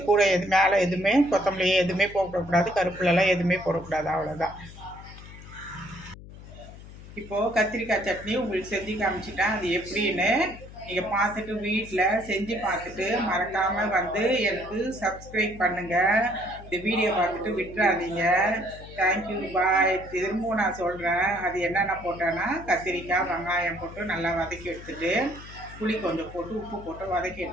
கூட மேலே எதுவுமே கொத்தமல்லி எதுவுமே போடக்கூடாது, கருப்புலலாம் எதுவுமே போடக்கூடாது. அவ்வளோதான். இப்போது கத்திரிக்காய் சட்னி உங்களுக்கு செஞ்சு காமிச்சிட்டேன். அது எப்படின்னு நீங்கள் பார்த்துட்டு வீட்டில் செஞ்சு பார்த்துட்டு மறக்காமல் வந்து எனக்கு சப்ஸ்கிரைப் பண்ணுங்கள். இந்த வீடியோ பார்த்துட்டு விட்டுறாதீங்க. தேங்க்யூ, பாய். திரும்பவும் நான் சொல்கிறேன், அது என்னென்ன போட்டேன்னா கத்திரிக்காய் வெங்காயம் போட்டு நல்லா வதக்கி எடுத்துட்டு புளி கொஞ்சம் போட்டு உப்பு போட்டு வதக்கி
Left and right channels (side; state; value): left; noise; hum, 16 dB below the sound